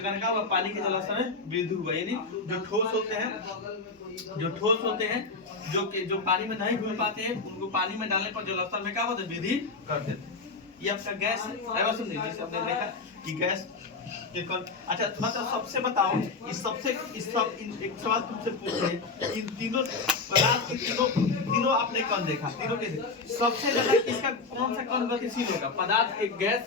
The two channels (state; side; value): quieter; right; 4.0 dB